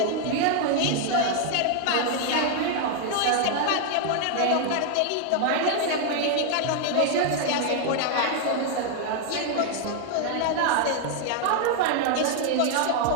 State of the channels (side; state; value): both; different; correlation 0.00